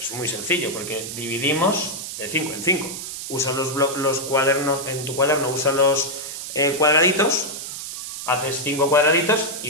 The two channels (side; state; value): right; noise; hiss, 8 dB below the sound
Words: muy sencillo, porque dividimos de 5 en 5. Usa los cuadernos, en tu cuaderno usa los cuadraditos, haces 5 cuadraditos